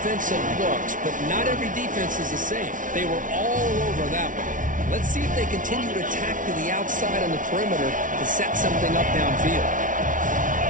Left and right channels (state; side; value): late; left; 0.38 ms